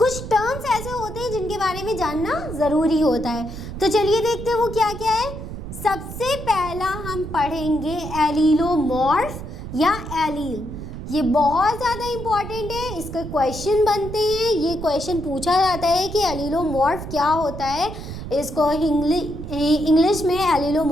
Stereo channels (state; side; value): noise; right; rumble, 9 dB below the sound